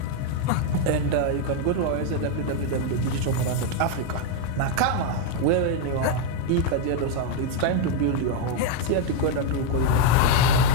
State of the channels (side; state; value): both; different; correlation 0.01